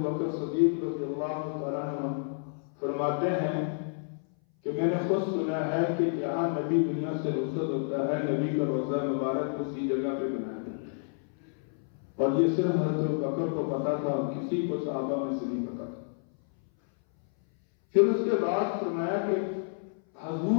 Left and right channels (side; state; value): right; silent; 58 dB below the other